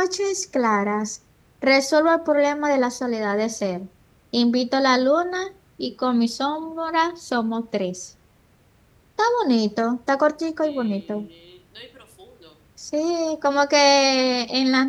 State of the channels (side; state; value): both; identical; correlation 1.00